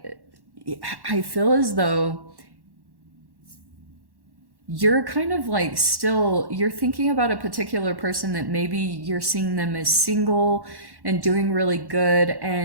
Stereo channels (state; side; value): late; left; 1.1 ms